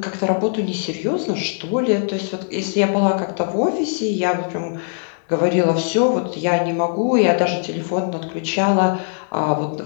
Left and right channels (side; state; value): right; silent; digital silence